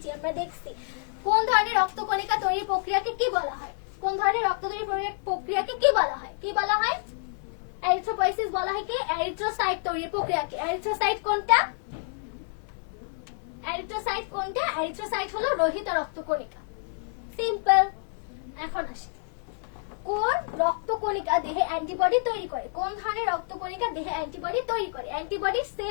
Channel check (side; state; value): right; silent; 57 dB below the other